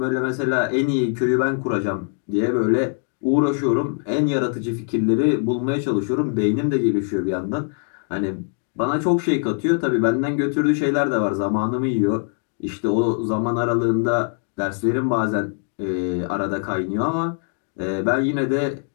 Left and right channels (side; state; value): right; silent; 56 dB below the other